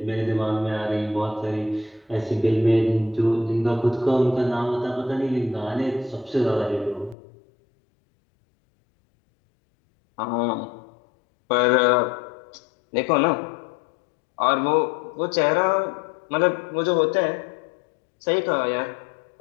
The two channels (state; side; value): drops out; right; at 7.2 s